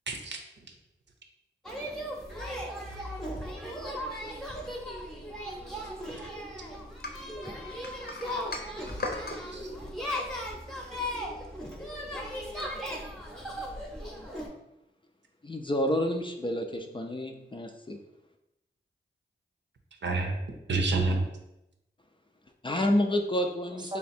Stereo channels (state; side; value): normal; both; correlation 0.58